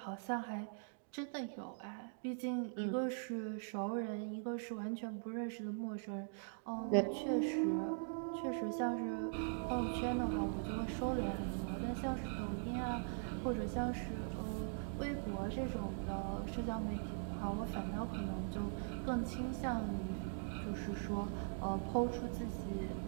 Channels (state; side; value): silent; left; digital silence